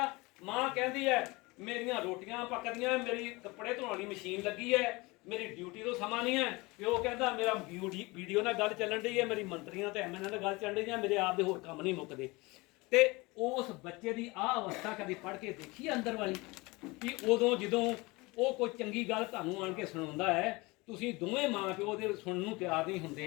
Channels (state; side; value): quieter; right; 23.9 dB